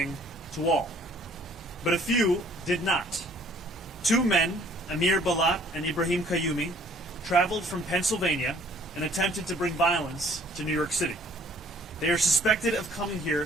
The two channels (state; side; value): normal; both; correlation 0.58